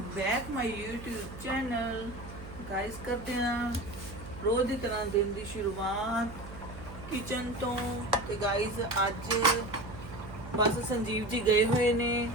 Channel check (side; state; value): right; noise; hum, 13 dB below the sound